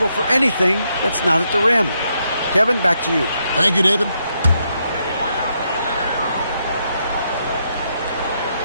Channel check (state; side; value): inverted; both; correlation -0.78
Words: for anything that's not at the rim. Kevin, back to you. Thank you, David.